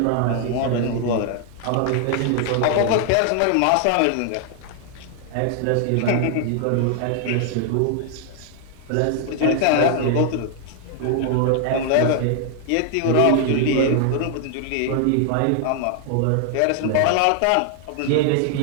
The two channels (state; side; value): different; both; correlation 0.00